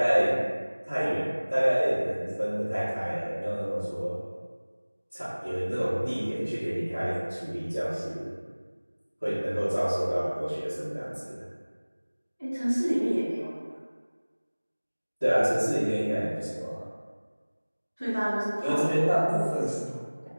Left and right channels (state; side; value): inverted; both; correlation -1.00